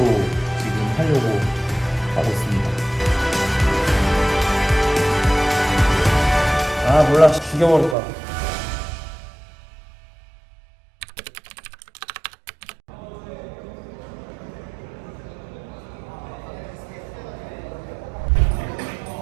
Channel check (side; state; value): left; drops out; at 8.0 s